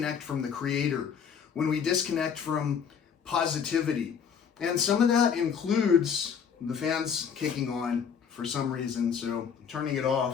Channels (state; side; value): quieter; right; 7.1 dB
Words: from the Creator, when we disconnect from positivity. And some of that includes, the fan's kicking on for some reason, so I'm turning it